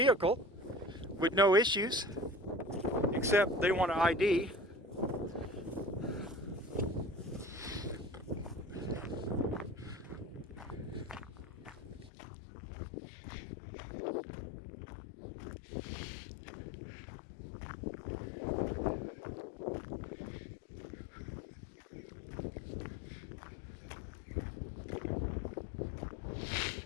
with no issues, except they want an ID.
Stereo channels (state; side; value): drops out; right; at 12.1 s